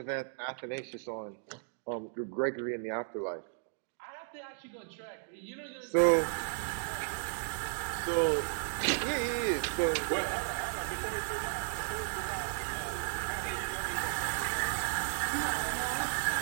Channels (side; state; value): left; silent; digital silence